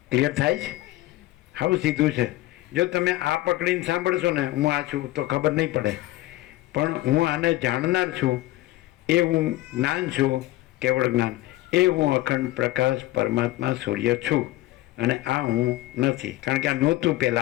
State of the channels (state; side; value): quieter; right; 16.9 dB